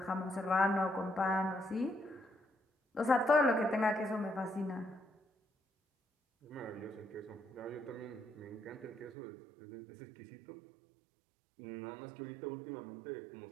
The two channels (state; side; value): drops out; left; at 9.2 s